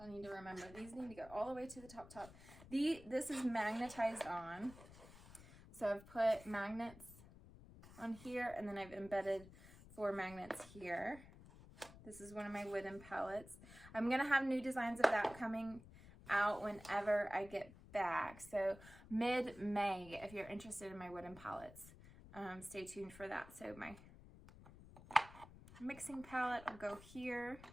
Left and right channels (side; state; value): left; noise; rumble, 18 dB below the sound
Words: I need to remember, these need to go all the way to the top. This is magnetized on. So I've put magnets on here, and then I've embedded 4 magnets here. This is one of my wooden palettes. I'm gonna have new designs of that coming out whenever I get back. So mid-May, if you're interested in my wooden palettes, stay tuned for that. So my mixing palette will go here,